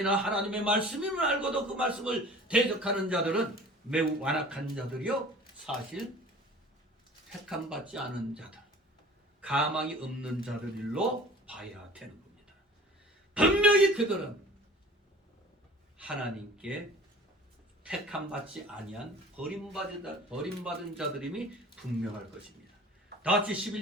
하나님의 말씀임을 알고도 그 말씀을 대적하는 자들은 매우 완악한 자들이요, 사실 택함받지 않은 자들, 가망이 없는 자들로 봐야 되는 겁니다. 분명히 그들은 하나님께 택함받지 아니한 버림받은 자들임이 분명할 것입니다. 다같이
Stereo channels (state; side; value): normal; both; correlation 0.45